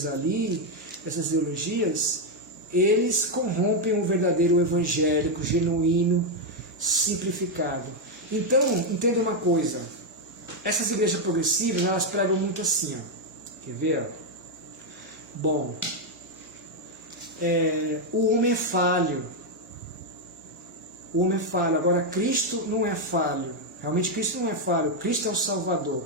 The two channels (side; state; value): both; normal; correlation 0.02